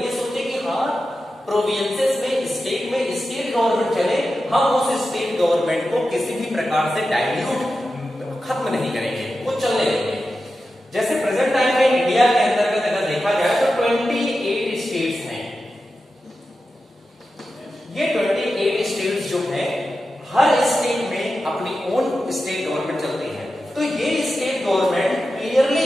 ये सोचे कि हाँ प्रोविंसेस में, स्टेट में स्टेट गवर्नमेंट चले, हम उस स्टेट गवर्नमेंट को किसी भी प्रकार से डाइल्यूट खत्म नहीं करेंगे, वो चलने देंगे। जैसे प्रेजेंट टाइम में इंडिया के अंतर्गत अगर देखा जाए तो 28 स्टेट्स हैं। ये 28 स्टेट्स जो हैं, हर स्टेट में अपनी ओन स्टेट गवर्नमेंट चलती है। तो ये स्टेट गवर्नमेंट क्लियरली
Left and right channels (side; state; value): both; normal; correlation 0.92